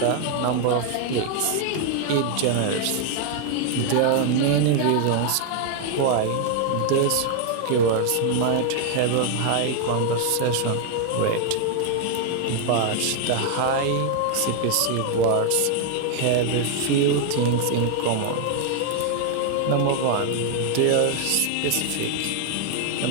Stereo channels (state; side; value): different; both; correlation 0.00